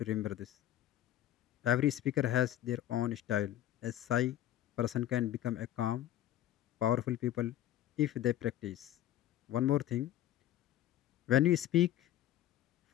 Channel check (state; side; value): quieter; right; 12.6 dB